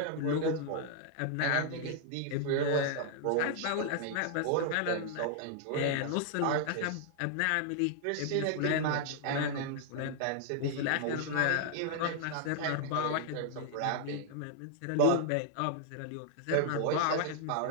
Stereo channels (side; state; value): both; different; correlation 0.00